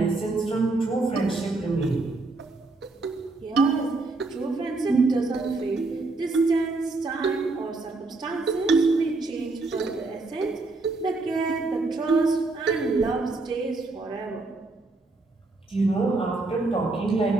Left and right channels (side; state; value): left; quieter; 3.4 dB